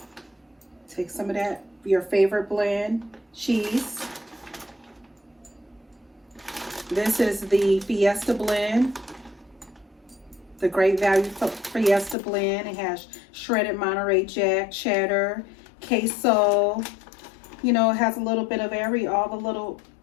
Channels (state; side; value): drops out; right; at 12.2 s